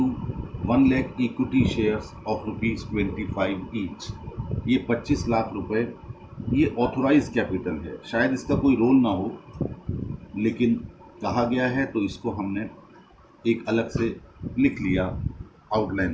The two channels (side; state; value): both; identical; correlation 1.00